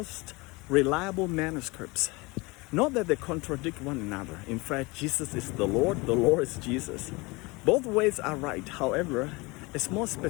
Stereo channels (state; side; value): quieter; right; 25.0 dB